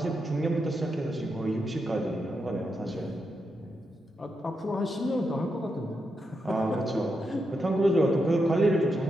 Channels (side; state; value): both; normal; correlation 0.84